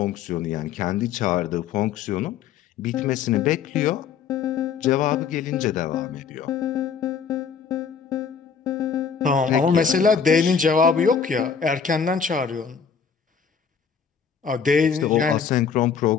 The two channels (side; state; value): right; quieter; 6.6 dB